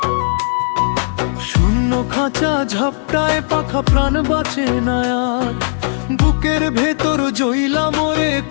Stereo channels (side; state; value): right; silent; digital silence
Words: শূন্য খাঁচা ঝাপটায় পাখা প্রাণ বাঁচে না আর, বুকের ভেতর জইলা মরে